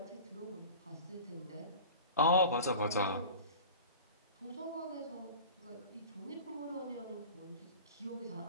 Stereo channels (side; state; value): both; inverted; correlation -0.37